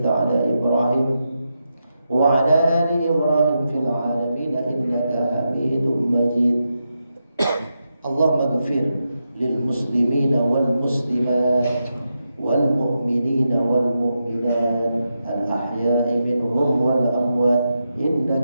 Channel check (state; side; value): inverted; both; correlation -0.87